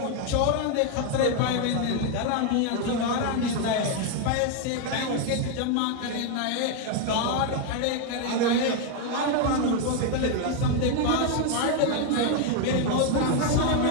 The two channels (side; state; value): both; different; correlation 0.01